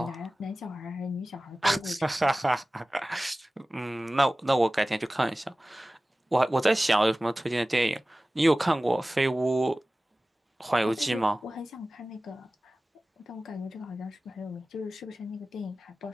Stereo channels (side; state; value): both; normal; correlation 0.97